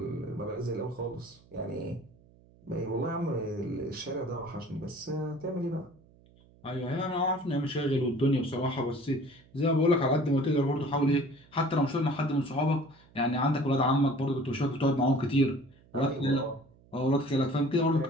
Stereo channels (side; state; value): right; noise; hum, 27 dB below the sound